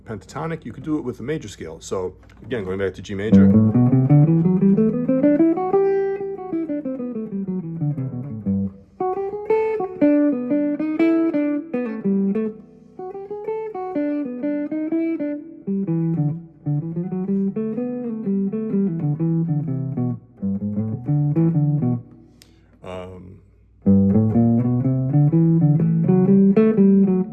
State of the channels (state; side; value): identical; both; correlation 1.00